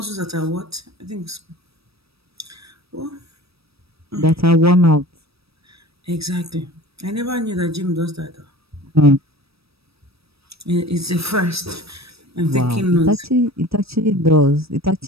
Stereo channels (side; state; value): left; late; 0.77 ms